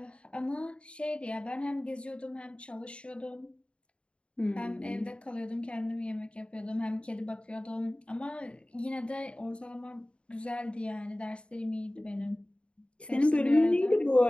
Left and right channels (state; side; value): late; right; 0.057 ms